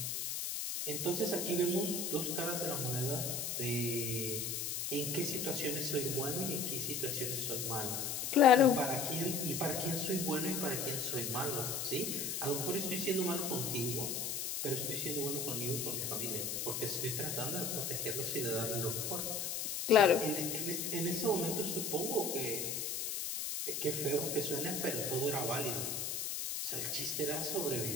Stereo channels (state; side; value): noise; left; hiss, 2 dB below the sound